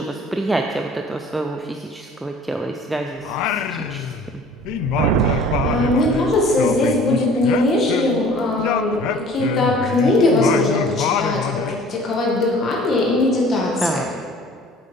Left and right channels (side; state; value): both; normal; correlation 0.49